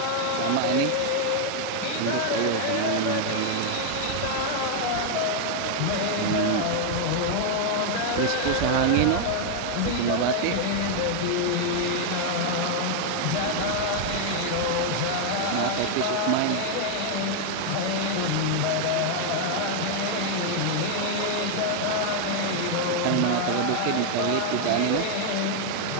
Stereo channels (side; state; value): both; different; correlation 0.00